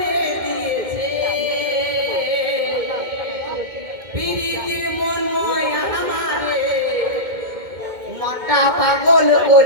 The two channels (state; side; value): late; left; 2.1 ms